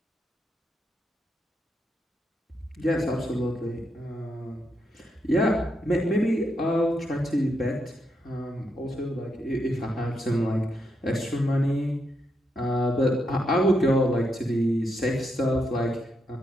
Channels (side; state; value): both; normal; correlation 0.81